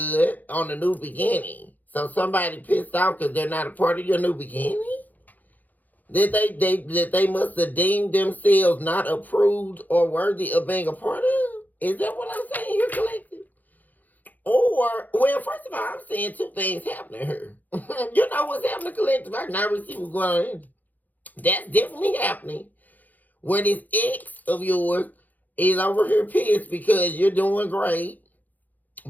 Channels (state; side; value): late; right; 0.082 ms